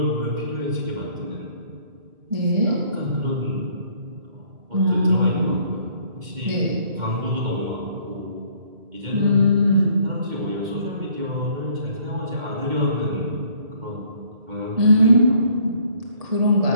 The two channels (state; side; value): late; left; 2.1 ms